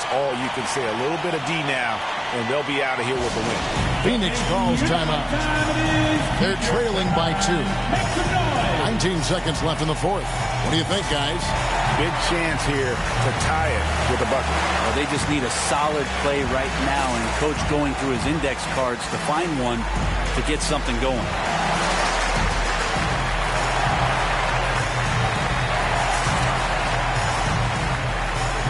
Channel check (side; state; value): both; identical; correlation 1.00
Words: all you can say. A little bit of D now, and they'll be out of here with the win. Phoenix calls timeout. They're trailing by 2. 19 seconds left in the fourth. What do you think, guys? Big chance here to tie it with a bucket. Well, they just need a solid play right now, and Coach going through his index cards to find one to get something going.